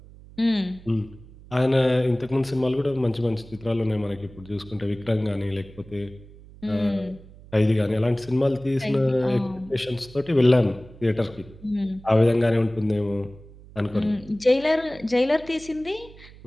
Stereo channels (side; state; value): right; noise; hum, 20 dB below the sound